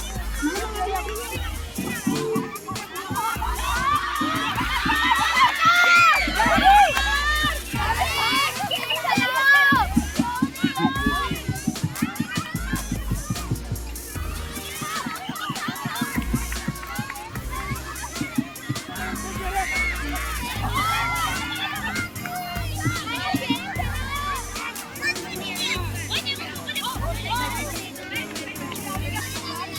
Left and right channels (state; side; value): identical; both; correlation 1.00